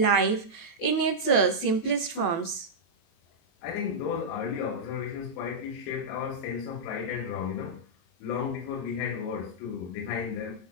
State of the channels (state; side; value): late; right; 22 ms